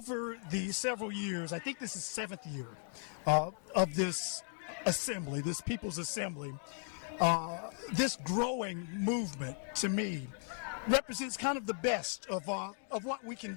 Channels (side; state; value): right; silent; 53 dB below the other